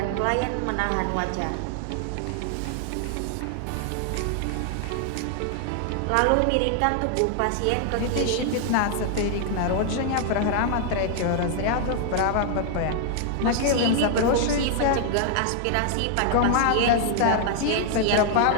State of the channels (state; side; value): different; both; correlation 0.00